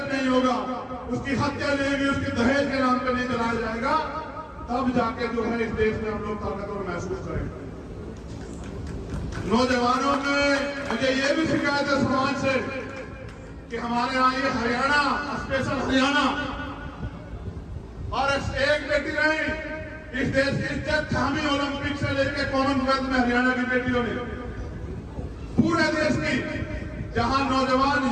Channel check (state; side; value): identical; both; correlation 1.00